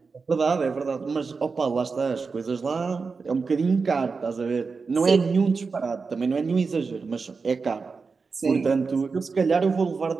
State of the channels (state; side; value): quieter; left; 4.7 dB